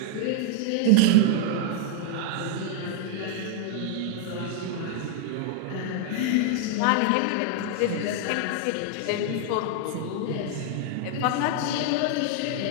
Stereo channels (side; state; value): both; different; correlation 0.00